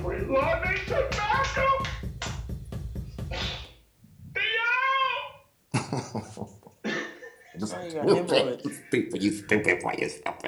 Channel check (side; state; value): both; identical; correlation 1.00